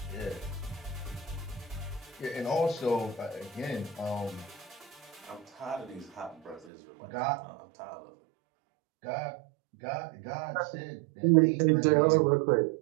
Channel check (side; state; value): left; drops out; at 6.7 s